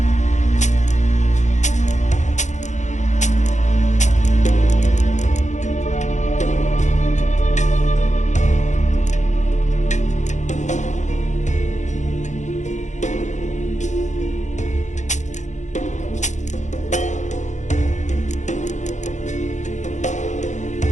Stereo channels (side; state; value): right; late; 0.35 ms